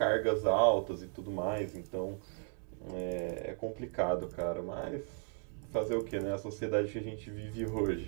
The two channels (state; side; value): quieter; left; 37.7 dB